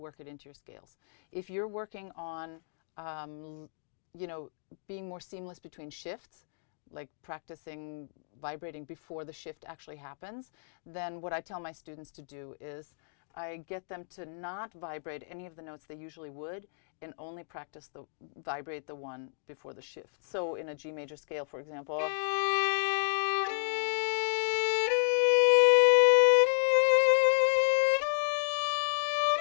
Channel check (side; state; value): right; silent; digital silence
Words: it into your scales. If you're working on, being more seamless between shifts, like practicing vibrating before the shift actually happens, then what I tell my students to do is I get them to not vibrate any of the notes they usually would and only vibrate the one before the shift. So in a G major scale, for example, does